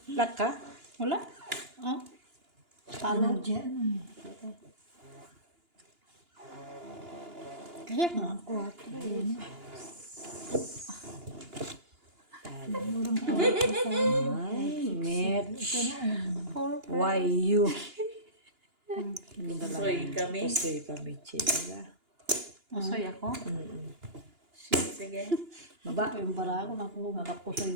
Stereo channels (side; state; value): left; late; 2.9 ms